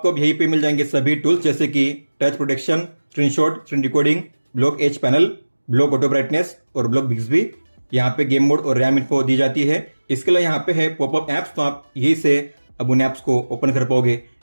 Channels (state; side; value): inverted; both; correlation -1.00